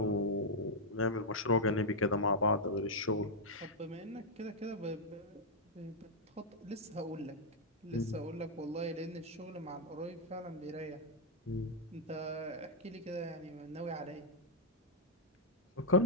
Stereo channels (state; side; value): normal; both; correlation -0.05